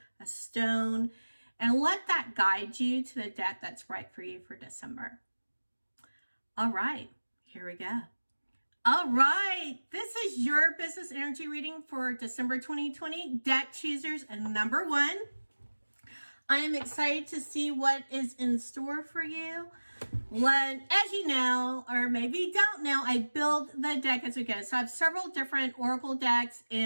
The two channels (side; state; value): both; inverted; correlation -1.00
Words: a stone, and let that guide you to the deck that's right for you for December. All right, here we go. All right, this is your business energy reading for December 2020, deck choosers and number 1. I am excited to see what is in store for you. As you know, or maybe don't know, I build the deck as we go. So I have several different oracle decks